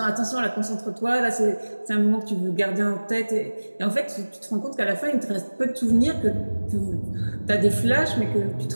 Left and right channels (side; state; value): both; inverted; correlation -1.00